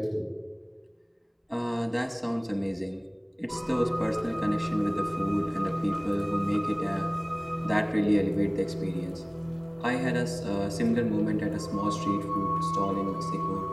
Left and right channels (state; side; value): identical; both; correlation 1.00